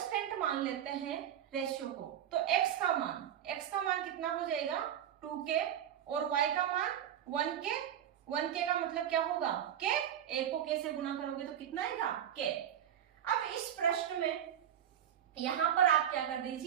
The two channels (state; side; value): quieter; left; 10.2 dB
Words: मान लेते हैं रेशियो को, तो x का मान कितना हो जाएगा 2k, और y का मान 1k। 1k का मतलब क्या होगा k, a को k से गुना करोगे तो कितना आएगा k। अब इस प्रश्न में यहां पर आप क्या कर